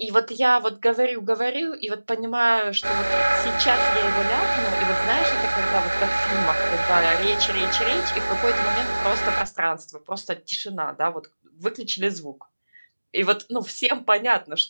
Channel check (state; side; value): inverted; both; correlation -1.00